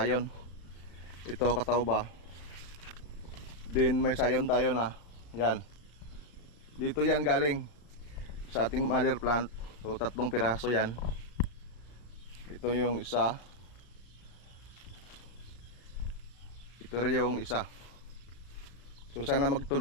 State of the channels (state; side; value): late; right; 35 ms